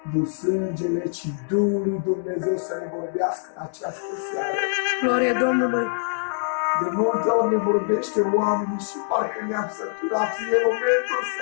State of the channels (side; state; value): right; silent; 63 dB below the other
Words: nu sângele, ci Duhul lui Dumnezeu să ne vorbească în această seară. Glorie Domnului. De multe ori ne vorbește oamenii și parcă ne-am săturat. E momentul să